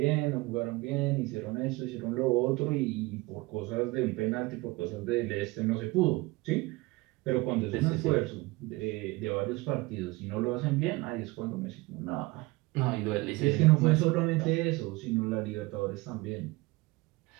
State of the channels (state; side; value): quieter; left; 22.5 dB